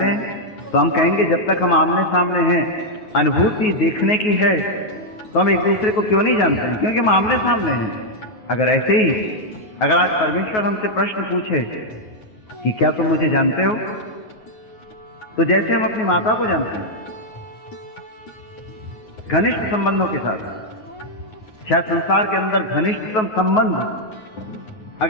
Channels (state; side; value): late; right; 9.4 ms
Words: हैं? तो हम कहेंगे, जब तक हम आमने सामने हैं, अनुभूति देखने की है, तो हम एक दूसरे को क्यों नहीं जानते हैं? क्योंकि हम आमने सामने हैं। अगर ऐसे ही अगर आज परमेश्वर हमसे प्रश्न पूछे कि क्या तुम मुझे जानते हो, तो जैसे हम अपनी माता को जानते हैं, घनिष्ठ संबंधों के साथ, क्या संसार के अंदर घनिष्ठतम संबंध